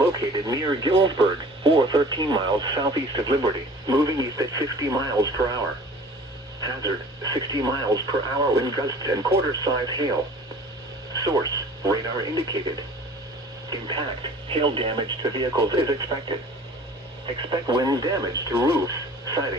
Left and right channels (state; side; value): normal; both; correlation 0.46